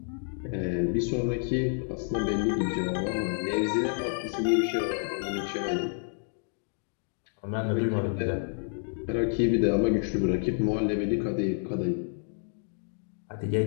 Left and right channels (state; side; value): silent; right; 58 dB below the other